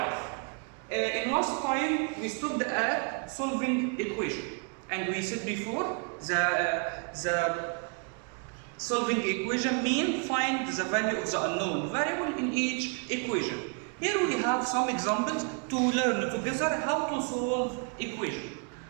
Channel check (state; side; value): quieter; left; 38.0 dB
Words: In last time we stopped at solving equation, and we said before the solving equation means find the value of the unknown variable in each equation. Here we have some examples to learn together how to solve equation.